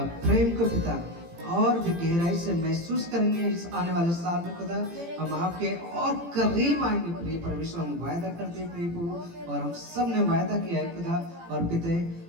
प्रेम को पिता और भी गहराई से महसूस करेंगे इस आने वाले साल में खुदा। हम आपके और करीब आएंगे प्रिय परमेश्वर, हम वायदा करते हैं प्रिय प्रभु, और हम सब ने वायदा किया है खुदा, और पिता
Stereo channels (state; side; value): late; left; 18 ms